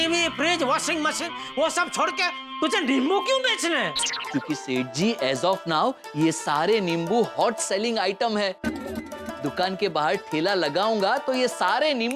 फ्रिज, वॉशिंग मशीन, वो सब छोड़ के तुझे नींबू क्यों बेचने हैं? क्योंकि सेठ जी एज ऑफ नाउ ये सारे नींबू हॉट सेलिंग आइटम है। दुकान के बाहर ठेला लगाऊंगा तो ये सारे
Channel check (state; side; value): identical; both; correlation 1.00